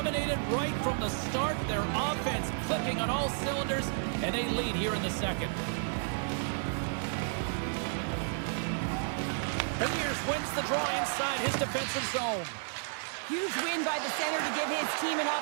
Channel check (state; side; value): silent; left; digital silence